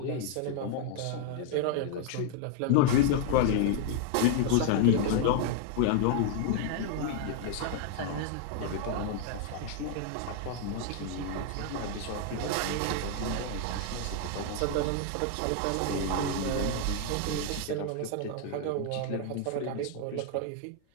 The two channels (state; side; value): different; both; correlation 0.00